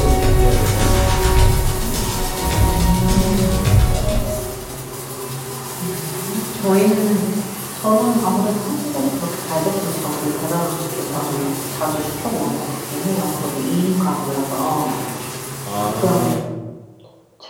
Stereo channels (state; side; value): identical; both; correlation 1.00